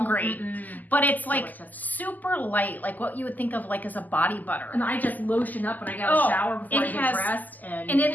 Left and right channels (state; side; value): late; right; 0.083 ms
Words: but it's like super light, like what you would think of like as a body butter. And I just lotion up when I get a shower before I get dressed. And it